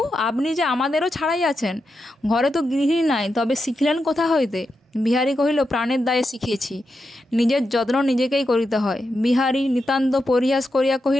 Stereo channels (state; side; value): normal; both; correlation 0.87